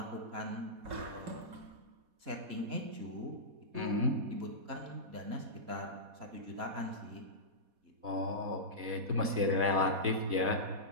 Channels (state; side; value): late; left; 4.1 ms